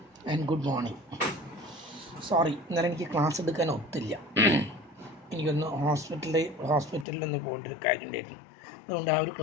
and good morning. Sorry, ഇന്നലെ എനിക്ക് class എടുക്കാൻ ഒത്തില്ല. എനിക്കൊന്ന് ഹോസ്പിറ്റലിലൊന്ന് പോകേണ്ട ഒരു കാര്യം ഉണ്ടായിരുന്നു. അതുകൊണ്ട് ആ ഒരു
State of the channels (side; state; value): right; drops out; at 7.1 s